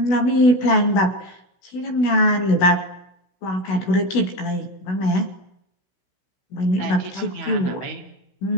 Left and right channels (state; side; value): late; right; 16 ms